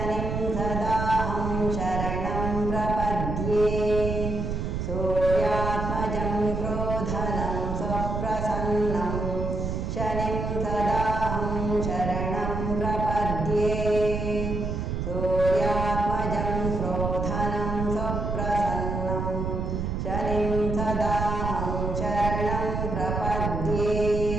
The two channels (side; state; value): right; noise; rumble, 2 dB below the sound